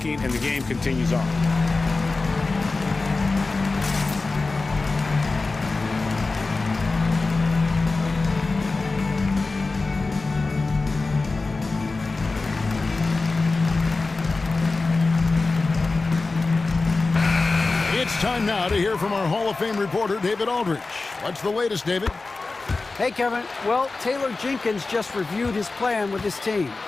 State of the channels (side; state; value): right; quieter; 3.7 dB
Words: and the game continues on. It's time now to hear from our Hall of Fame reporter, David Aldridge. What's the latest, David? Hey, Kevin. Well, Taylor Jenkins just reviewed his plan with his team.